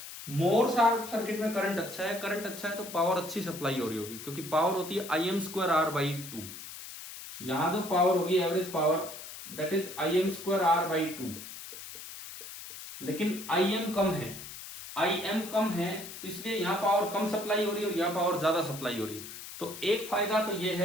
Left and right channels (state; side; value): noise; left; hiss, 12 dB below the sound